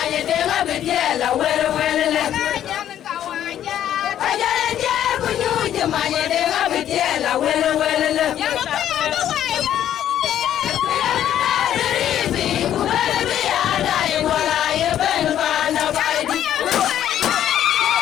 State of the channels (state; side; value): quieter; right; 10.9 dB